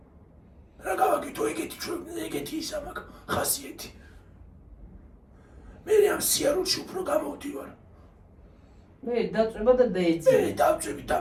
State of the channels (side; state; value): both; identical; correlation 1.00